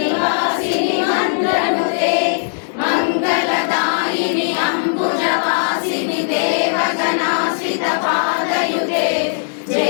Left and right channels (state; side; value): silent; right; 66 dB below the other